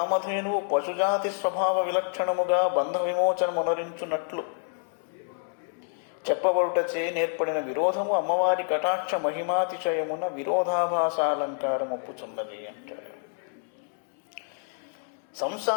పశుజాతి స్వభావ విలక్షణముగా బంధ విమోచనమునరించున్నట్లు చెప్పబడుటచే నేర్పడిన విరోధము అమ్మవారి కటాక్ష మహిమాతిశయమున విరోధాభాసాలంకారం ఒప్పుచున్నది అంటాడు.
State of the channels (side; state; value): right; silent; 60 dB below the other